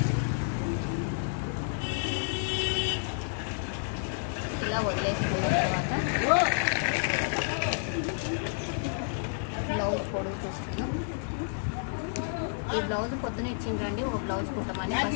ఇలా వదిలేసుకున్న తర్వాత బ్లౌజ్ పొడుగు చూస్తున్నాం. ఈ బ్లౌజ్ పొద్దున ఇచ్చిండ్రండి, ఒక బ్లౌజ్ కుట్టమని.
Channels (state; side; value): silent; right; digital silence